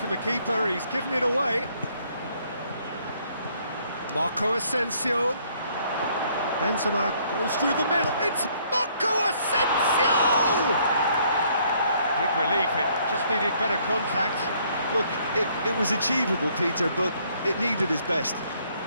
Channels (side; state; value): both; inverted; correlation -0.65